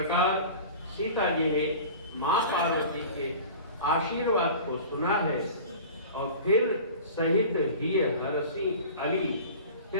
सीता जी ने मां पार्वती के आशीर्वाद को सुना है और फिर सहित हिय हरसी अली,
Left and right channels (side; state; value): both; inverted; correlation -0.39